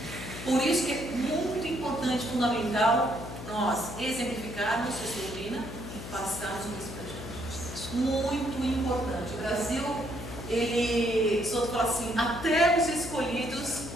Por isso que é muito importante, fundamental, nós exemplificarmos essa doutrina e passarmos isso para gente. Muito importante. O Brasil, ele, só fala assim, até os escolhidos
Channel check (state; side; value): noise; left; hum, 10 dB below the sound